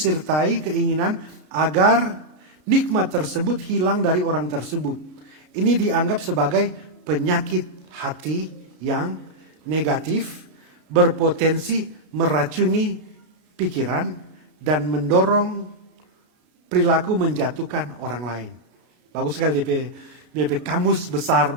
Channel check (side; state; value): left; late; 33 ms